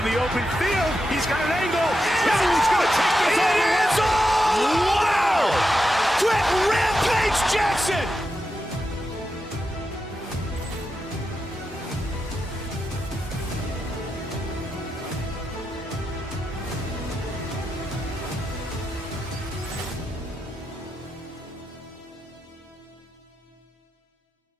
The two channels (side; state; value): both; normal; correlation 0.88